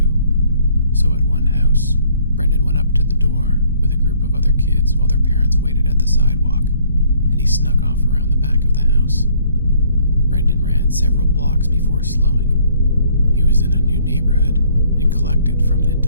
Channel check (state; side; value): inverted; both; correlation -0.62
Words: So at one house, Brendan went up to the door with a group of other kids while their parents waited at the sidewalk, and he snuck off around the back of the house. Brendan ran several blocks before slowing. He was in a new neighborhood and collected from an